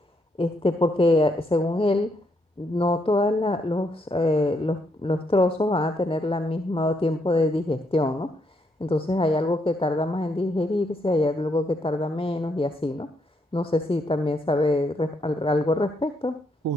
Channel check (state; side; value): normal; both; correlation 0.76